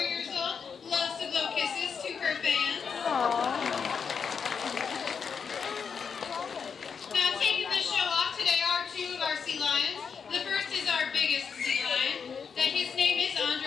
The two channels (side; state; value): right; quieter; 6.3 dB